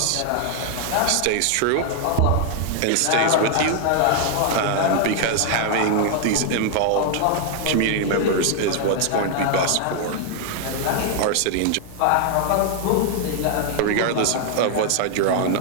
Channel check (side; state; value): both; different; correlation 0.00